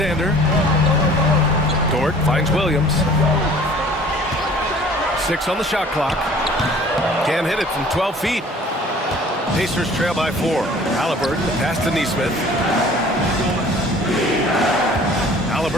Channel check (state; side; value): normal; both; correlation 0.50